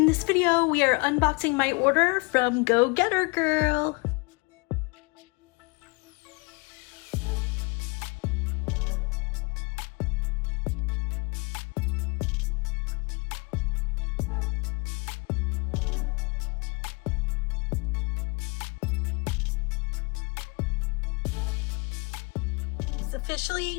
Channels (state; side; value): quieter; right; 28.4 dB